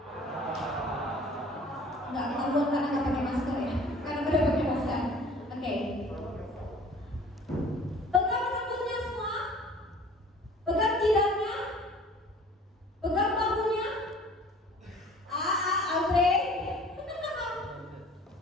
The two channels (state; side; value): normal; both; correlation 0.48